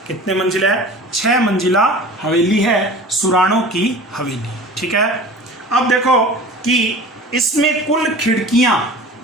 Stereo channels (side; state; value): both; normal; correlation 0.40